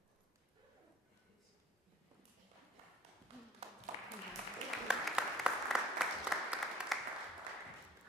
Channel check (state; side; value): normal; both; correlation 0.53